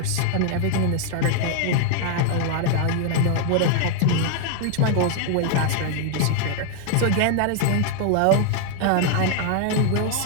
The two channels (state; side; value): different; both; correlation 0.00